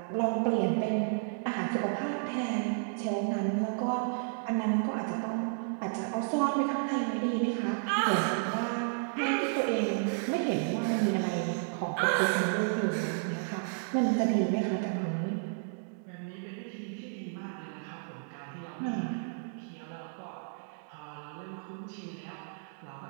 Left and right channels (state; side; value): silent; left; digital silence